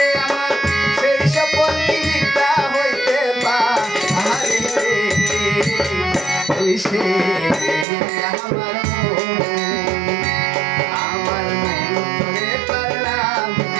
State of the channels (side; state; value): left; drops out; at 7.9 s